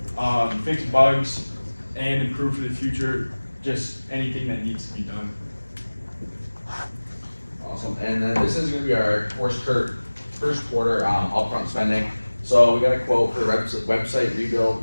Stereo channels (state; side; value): inverted; both; correlation -1.00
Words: fix bugs, and improve for the future, just anything that needs to be done. Awesome, and then this is gonna be our first quarter upfront spending. So we got a quote for the website rebuild.